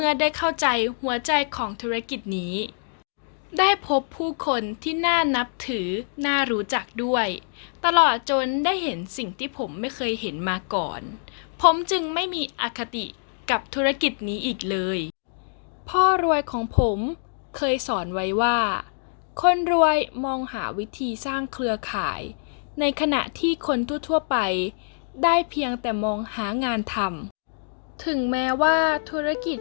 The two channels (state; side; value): silent; right; digital silence